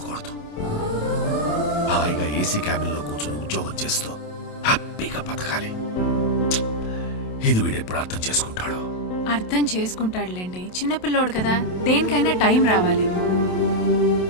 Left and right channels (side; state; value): right; late; 27 ms